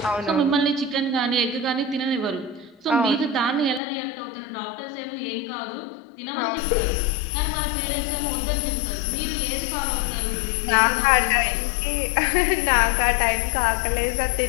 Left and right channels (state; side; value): drops out; right; at 3.8 s